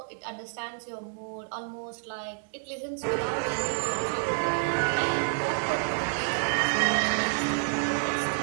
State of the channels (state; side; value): silent; left; digital silence